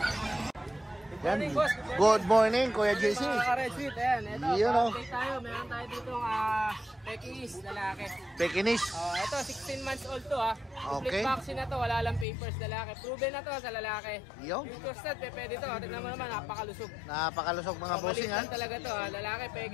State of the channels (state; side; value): drops out; right; at 12.2 s